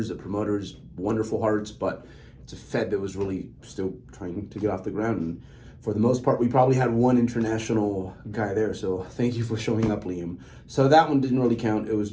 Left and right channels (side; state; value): both; identical; correlation 1.00